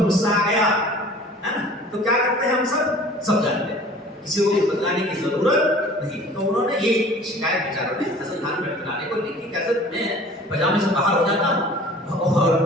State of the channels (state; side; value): normal; both; correlation 0.46